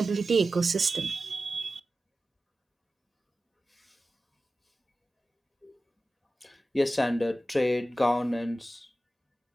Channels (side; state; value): both; normal; correlation 0.94